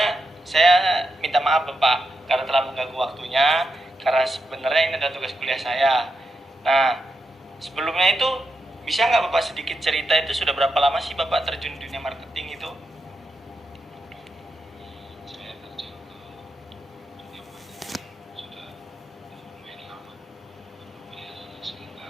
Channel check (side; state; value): both; normal; correlation 0.85